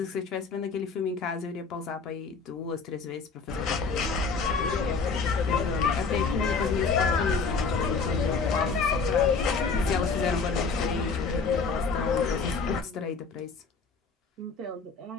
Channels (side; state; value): right; quieter; 4.7 dB